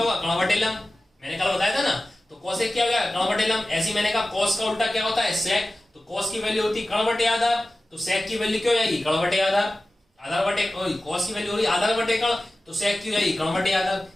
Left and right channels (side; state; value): both; normal; correlation 0.95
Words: कर्ण/लंब। मैंने कल बताया था ना, तो कोसेक क्या हो गया, कर्ण/लंब। ऐसे मैंने कहा कॉस का उल्टा क्या होता है, सेक, तो कॉस की वैल्यू होती कर्ण/आधार, तो सेक की वैल्यू क्या हो जाएगी, कर्ण/आधार। आधार बटे कॉस की वैल्यू हो रही आधार/कर्ण, तो सेक की जाएगी कर्ण/आधार।